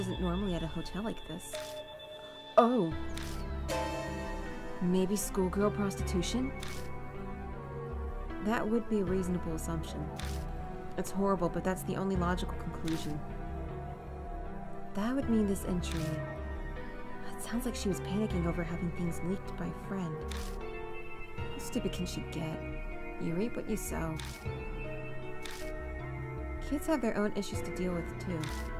normally at a hotel like this. Oh. Maybe schoolgirl prostitution? That would be a reasonable assumption. It's horrible, but that's the only logical conclusion. That would mean this entry... It sounds like she was panicking over having things leaked by a friend. How stupid can she get? You reap what you sow. Kids have their own issues to deal with, too.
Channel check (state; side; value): identical; both; correlation 1.00